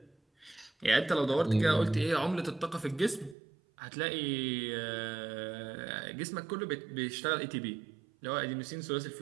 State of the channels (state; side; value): drops out; left; at 3.4 s